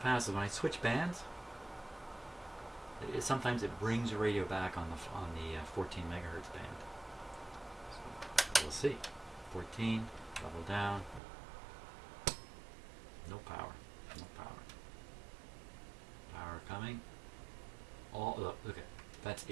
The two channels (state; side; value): drops out; left; at 11.2 s